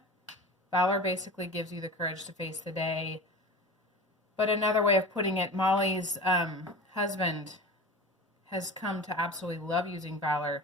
Valor basically gives you the courage to face the day. But another way of putting it, Molly's husband has come to absolutely love using Valor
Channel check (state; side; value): normal; both; correlation 0.33